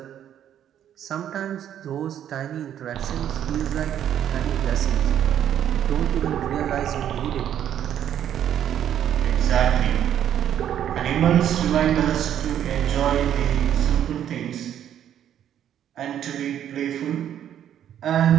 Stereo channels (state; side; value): quieter; left; 10.2 dB